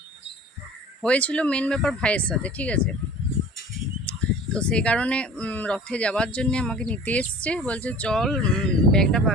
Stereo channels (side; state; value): both; normal; correlation 0.44